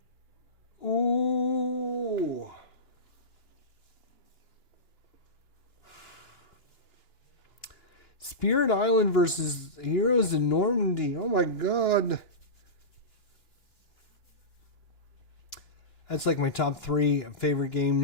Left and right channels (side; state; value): right; late; 2.9 ms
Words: Ooh. Spirit Island versus Heroes in Normandy. Oh my god. That's like my top 3 favorite